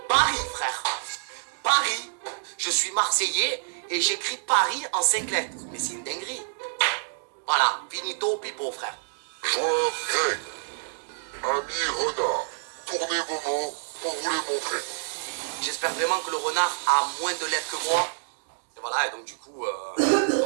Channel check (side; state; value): left; silent; digital silence